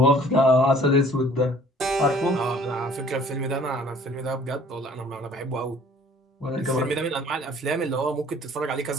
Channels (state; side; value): normal; both; correlation 0.54